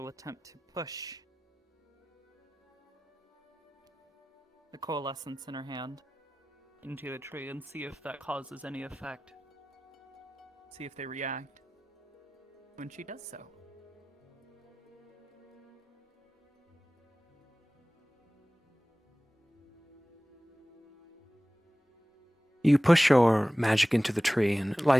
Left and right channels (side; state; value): both; normal; correlation 0.97